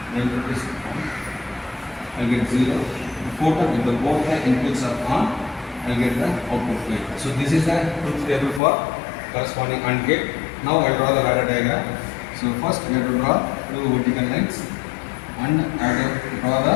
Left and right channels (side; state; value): right; drops out; at 8.6 s